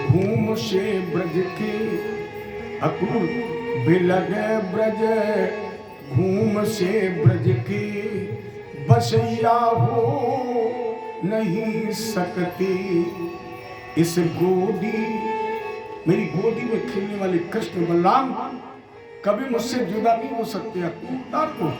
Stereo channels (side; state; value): both; identical; correlation 1.00